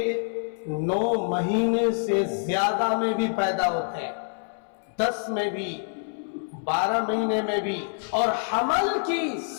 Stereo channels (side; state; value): right; silent; 61 dB below the other